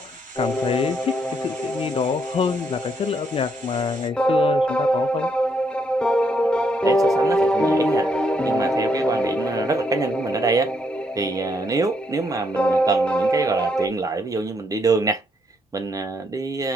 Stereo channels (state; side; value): normal; both; correlation 0.75